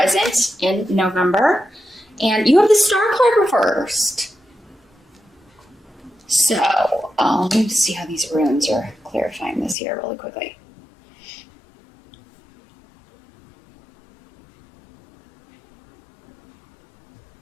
in November. And you have the Star card reversed. So, let me see how these runes are clarifying this here really quickly.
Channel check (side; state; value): right; drops out; at 9.8 s